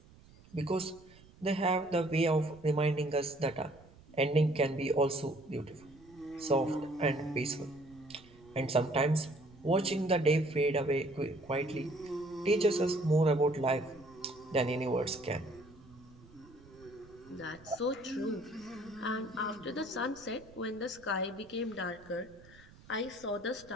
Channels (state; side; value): noise; right; rumble, 24 dB below the sound